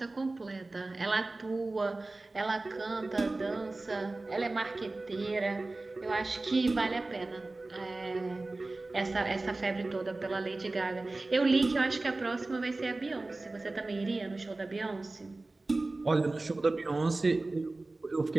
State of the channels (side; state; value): left; quieter; 3.1 dB